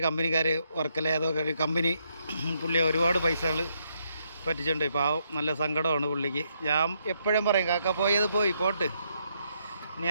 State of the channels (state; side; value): inverted; both; correlation -0.76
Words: കമ്പനിക്കാർ വർക്കല ഏതൊക്കെ ഒരു കമ്പനി പുള്ളി ഒരുപാട് പൈസകൾ പറ്റിച്ചിട്ടുണ്ട്. പാവം നല്ല സങ്കടമാണ് പുള്ളിക്ക്. ഞാൻ എപ്പോഴും പറയും കാക്ക പോയത് പോട്ട്, ഇനി